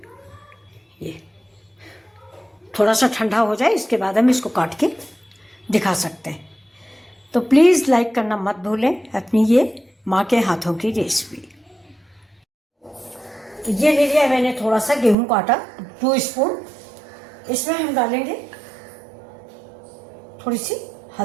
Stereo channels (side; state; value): left; drops out; at 15.2 s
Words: ये थोड़ा सा ठंडा हो जाए इसके बाद हम इसको काट के दिखा सकते हैं। तो प्लीज़ लाइक करना मत भूलें अपनी ये माँ के हाथों की रेसिपी। तो ये ले लिया मैंने थोड़ा सा गेहूं का आटा 2 स्पून। इसमें हम डालेंगे थोड़ी सी